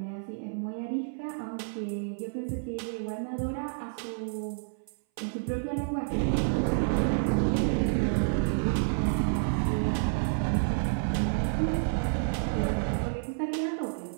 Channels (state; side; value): silent; left; 58 dB below the other